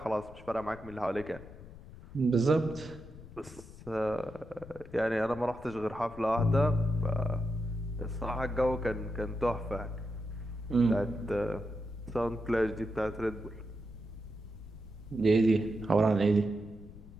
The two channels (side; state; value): left; noise; rumble, 17 dB below the sound